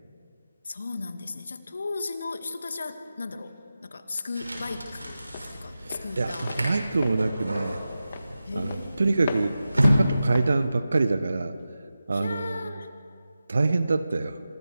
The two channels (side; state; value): both; inverted; correlation -0.93